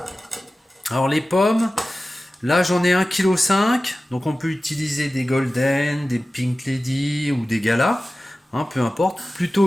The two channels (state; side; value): normal; both; correlation 0.95